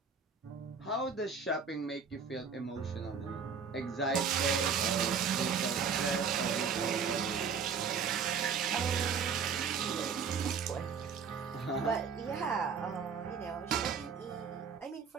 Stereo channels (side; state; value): left; quieter; 6.2 dB